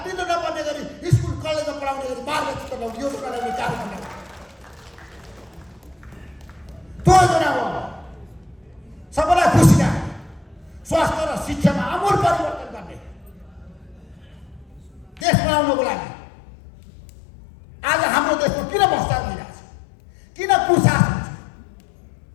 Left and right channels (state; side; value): drops out; right; at 15.2 s